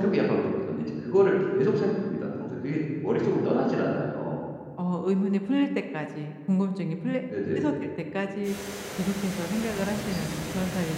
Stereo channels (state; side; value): identical; both; correlation 1.00